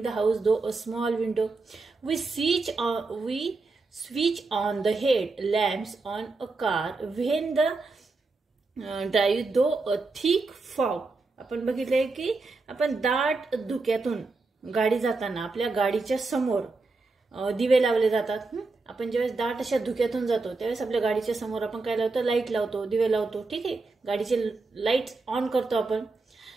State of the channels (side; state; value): left; quieter; 3.7 dB